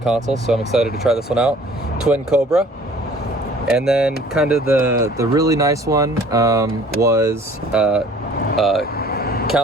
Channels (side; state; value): both; normal; correlation 0.52